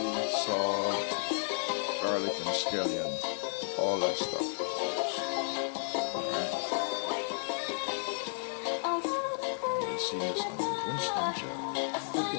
salt, garlic and scallion, all that stuff. You see this on Winston GeL.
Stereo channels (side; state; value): right; silent; digital silence